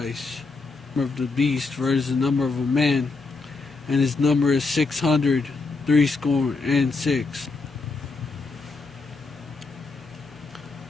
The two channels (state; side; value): quieter; right; 4.0 dB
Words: Of the beast versus the number of a man, and his number is 636.